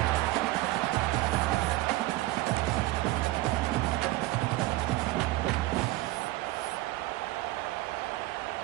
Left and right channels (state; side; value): quieter; left; 18.0 dB